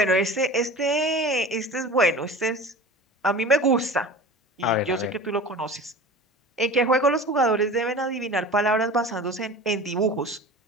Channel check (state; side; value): normal; both; correlation 0.36